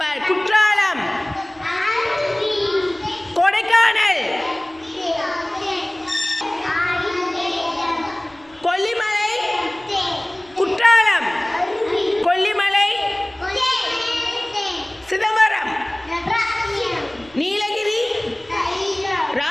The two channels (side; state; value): right; noise; rumble, 28 dB below the sound